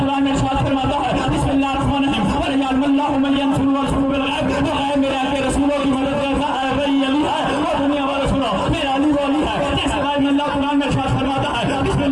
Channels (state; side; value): identical; both; correlation 1.00